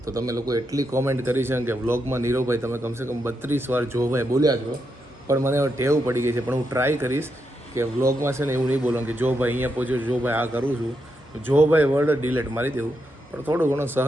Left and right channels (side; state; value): both; normal; correlation 0.83